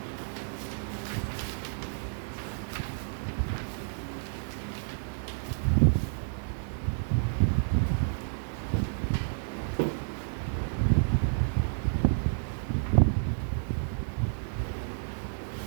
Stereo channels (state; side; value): silent; left; digital silence